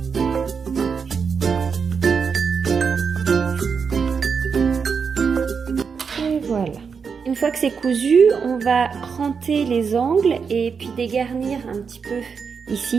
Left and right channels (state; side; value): quieter; left; 5.9 dB